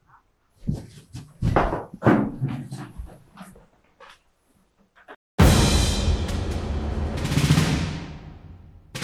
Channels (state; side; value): identical; both; correlation 1.00